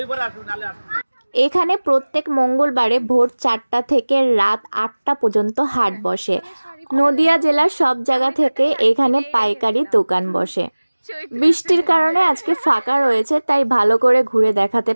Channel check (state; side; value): inverted; both; correlation -1.00